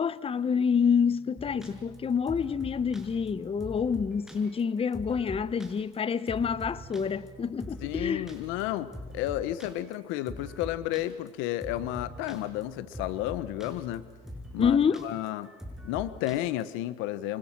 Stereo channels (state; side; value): quieter; right; 7.1 dB